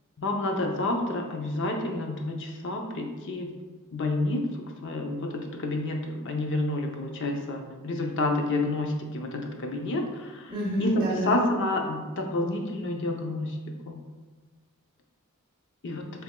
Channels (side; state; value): both; normal; correlation 0.42